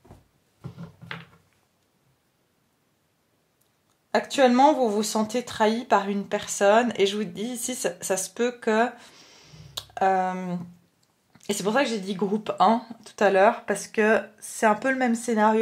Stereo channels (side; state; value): both; identical; correlation 1.00